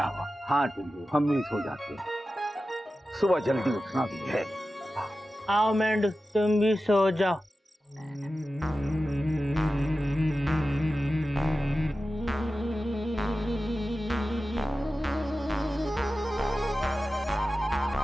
हाँ टुल्लू, हम भी सो जाते हैं, सुबह जल्दी उठना भी है। आओ मेंढू, तुम भी सो जाओ।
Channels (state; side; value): normal; both; correlation 0.93